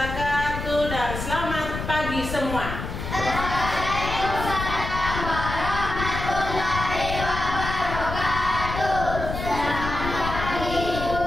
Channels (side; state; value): left; noise; rumble, 6 dB below the sound